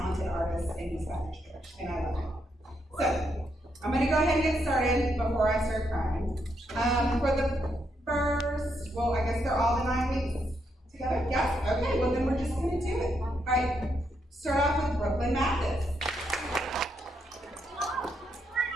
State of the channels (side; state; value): both; normal; correlation 0.78